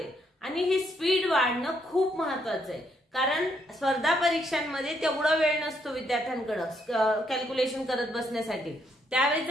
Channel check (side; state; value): both; normal; correlation 0.74